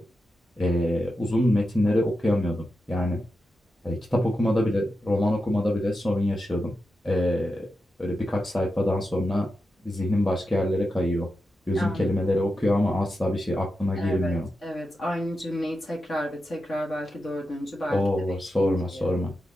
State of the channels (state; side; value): normal; both; correlation 0.89